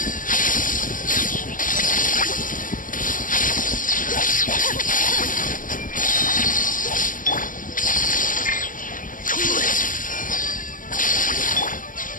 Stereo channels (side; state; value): right; late; 0.39 ms